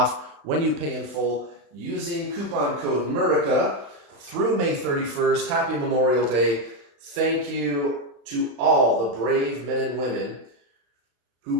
when you pay in full using coupon code Murica through May 31st. Happy Memorial Day. Thank you to all the brave men and women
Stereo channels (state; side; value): late; left; 35 ms